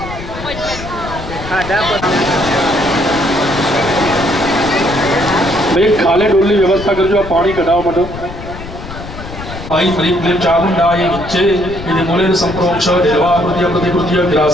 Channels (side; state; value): left; noise; rumble, 11 dB below the sound